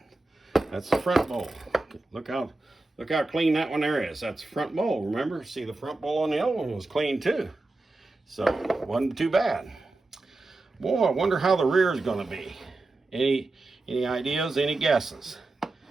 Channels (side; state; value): left; quieter; 3.1 dB